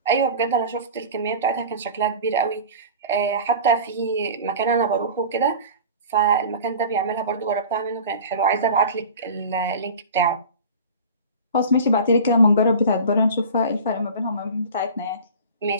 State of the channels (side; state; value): both; inverted; correlation -0.36